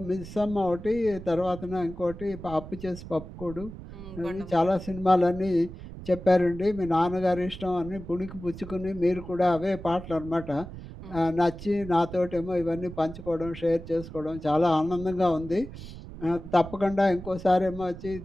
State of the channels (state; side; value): noise; right; rumble, 13 dB below the sound